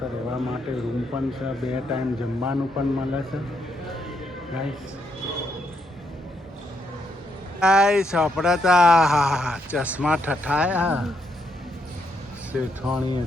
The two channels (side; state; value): both; normal; correlation 0.77